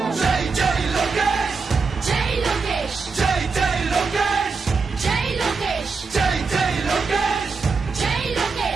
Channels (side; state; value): left; quieter; 4.6 dB